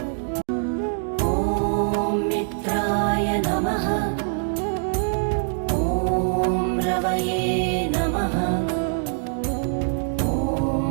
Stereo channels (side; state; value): left; silent; digital silence